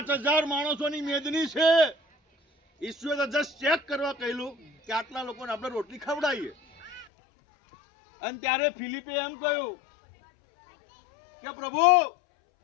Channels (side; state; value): right; drops out; at 7.1 s